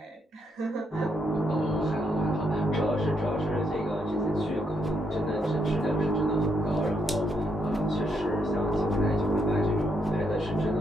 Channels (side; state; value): both; normal; correlation 0.77